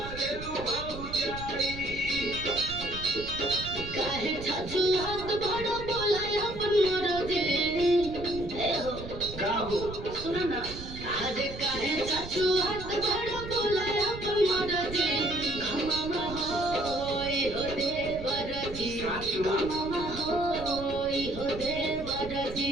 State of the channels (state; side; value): noise; right; rumble, 11 dB below the sound